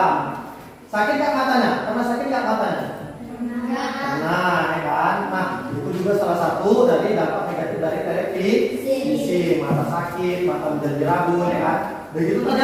Sakit nggak matanya? Karena sakit nggak matanya? Nah, ya kan? Nah, itu juga salah satu dari dampak negatif dari televisi. Mata sakit, mata menjadi rabun, ya kan? Begitu tadi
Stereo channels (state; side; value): identical; both; correlation 1.00